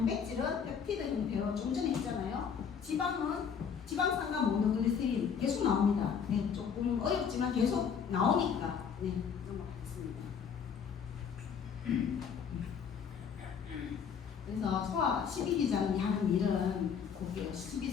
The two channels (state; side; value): quieter; right; 6.9 dB